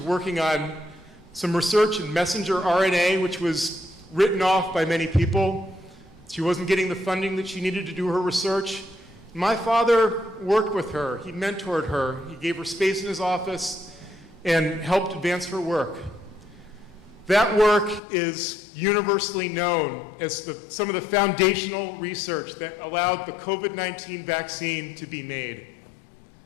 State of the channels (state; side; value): drops out; right; at 18.0 s